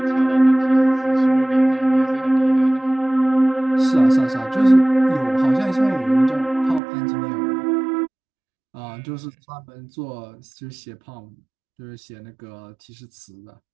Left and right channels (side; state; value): left; drops out; at 6.8 s